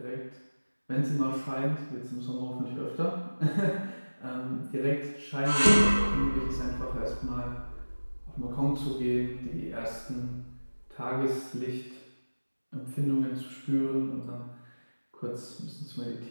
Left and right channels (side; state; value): both; inverted; correlation -1.00